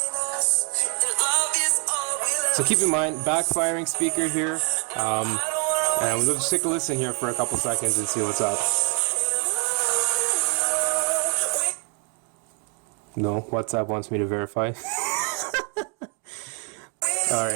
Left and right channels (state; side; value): quieter; left; 38.5 dB